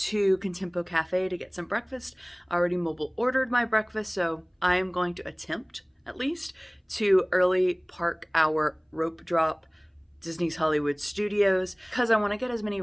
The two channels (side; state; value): both; identical; correlation 1.00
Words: Contempo Cafe to get some breakfast. I already mobile ordered my breakfast, so I am going to attempt at least to early park our rope drop Disney's Hollywood Studios because I want to get as many